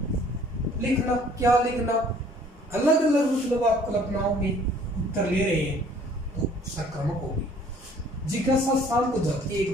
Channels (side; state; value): both; normal; correlation 0.56